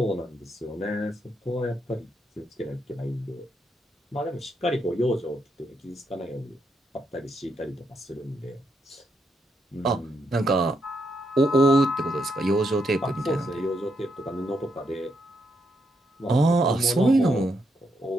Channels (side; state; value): both; normal; correlation 0.79